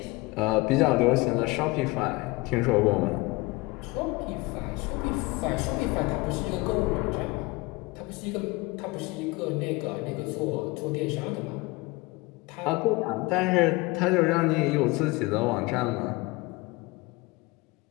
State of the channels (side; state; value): right; quieter; 22.9 dB